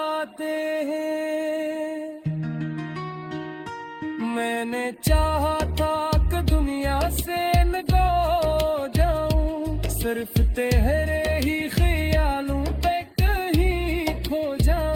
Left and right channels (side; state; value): both; identical; correlation 1.00